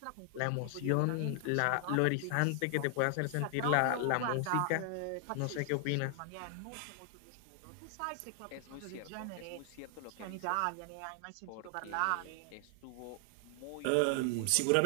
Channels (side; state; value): both; different; correlation 0.00